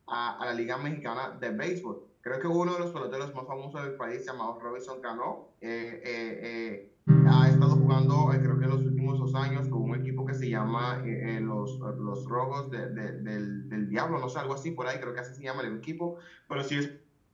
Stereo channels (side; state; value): both; identical; correlation 1.00